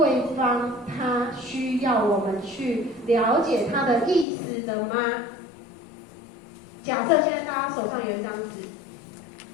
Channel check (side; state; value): right; drops out; at 4.2 s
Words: 方他需要我们去了解他的意思的吗？假设现在大家手上有一张纸，